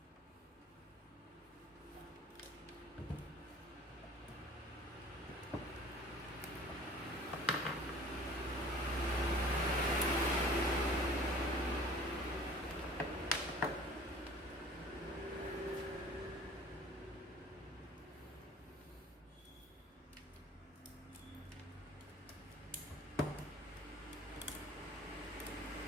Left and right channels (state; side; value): normal; both; correlation 0.47